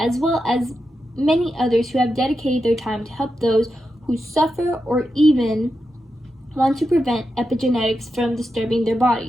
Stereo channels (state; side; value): normal; both; correlation 0.88